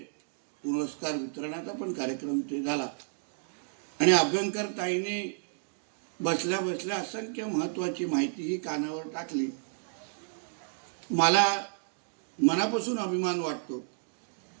पुरस्कार वितरणाचा पण कार्यक्रम इथे झाला आणि अभ्यंकर ताईंनी बसल्या बसल्या असंख्य महत्वाची माहिती ही कानावर टाकली. मला मनापासून अभिमान वाटतो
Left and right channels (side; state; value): left; silent; digital silence